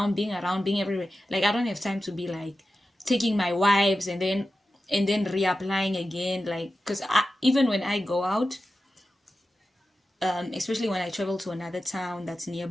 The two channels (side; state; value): both; normal; correlation 0.93